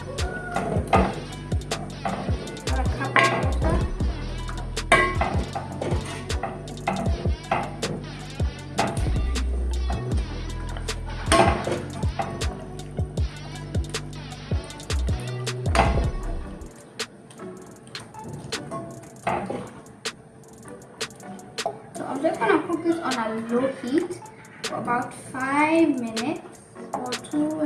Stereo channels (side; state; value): both; identical; correlation 1.00